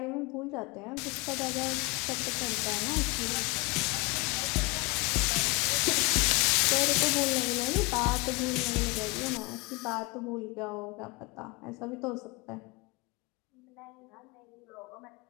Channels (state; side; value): quieter; right; 26.5 dB